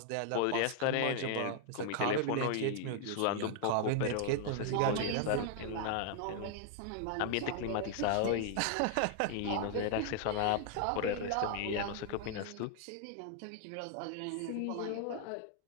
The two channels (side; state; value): both; different; correlation 0.00